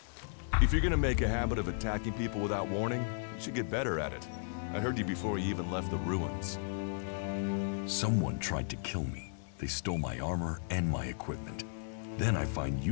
If you're gonna make a habit of attacking people without warning, you should get better at it. I heard you before you even left the ruins. Someone tried to kill me. They stole my armor and my equipment. Then I find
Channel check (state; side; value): silent; right; 55 dB below the other